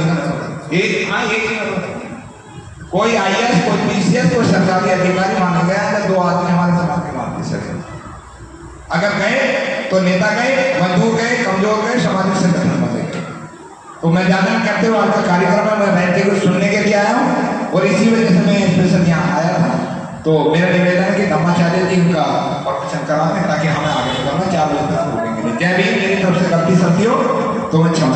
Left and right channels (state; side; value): identical; both; correlation 1.00